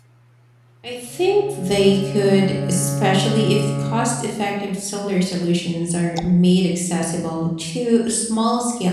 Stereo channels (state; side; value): identical; both; correlation 1.00